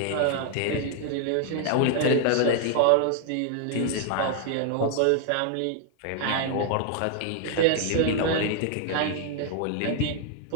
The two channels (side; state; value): both; different; correlation 0.00